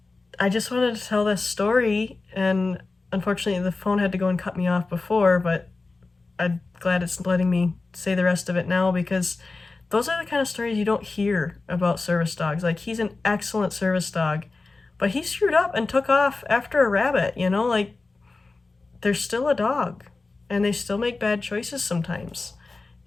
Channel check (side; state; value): right; quieter; 3.6 dB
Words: I just wanted to tell this story, and unfortunately the phone had to go and cut me off before, but I'm glad it's letting me say the rest of it now, because those are the kind of stories you don't hear about service dogs. Like, he's an excellent service dog, but he screwed up and took off after a rabbit, you know? Like, they're still a dog, and they still make bad choices sometimes.